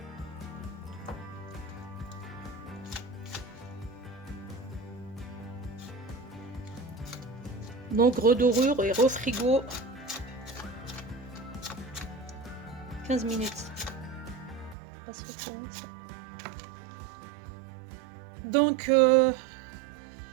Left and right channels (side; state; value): left; drops out; at 14.8 s